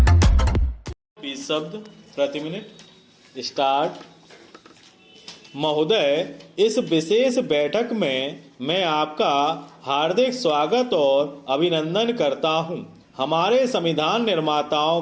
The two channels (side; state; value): both; identical; correlation 1.00